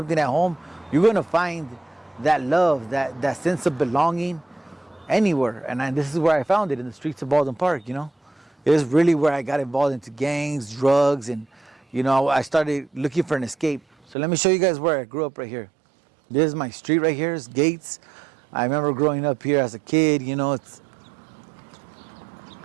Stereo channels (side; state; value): left; drops out; at 14.2 s